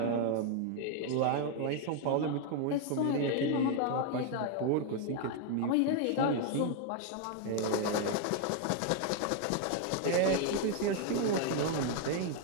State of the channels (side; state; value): both; different; correlation 0.01